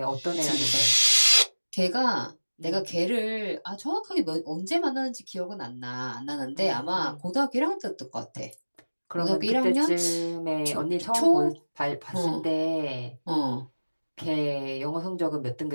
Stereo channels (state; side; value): inverted; both; correlation -1.00